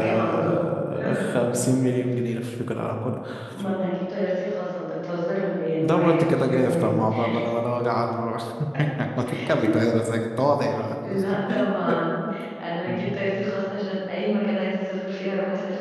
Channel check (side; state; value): both; identical; correlation 1.00